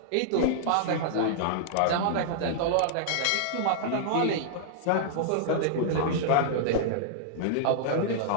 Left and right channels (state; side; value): different; both; correlation -0.01